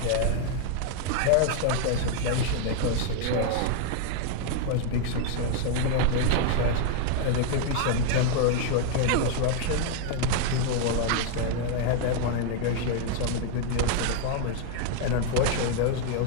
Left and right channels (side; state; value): both; different; correlation 0.00